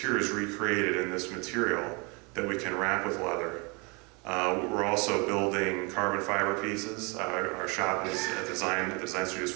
is recreated in this material that we can wrap with leather. We're also building carbon fiber pieces. Our shop is the design studio is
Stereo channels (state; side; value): quieter; left; 29.9 dB